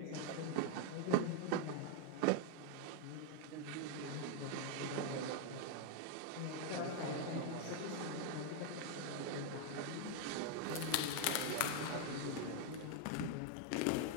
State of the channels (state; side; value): different; both; correlation 0.01